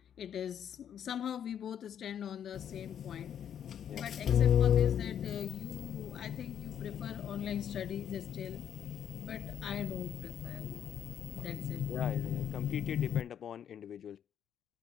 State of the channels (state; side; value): quieter; right; 9.1 dB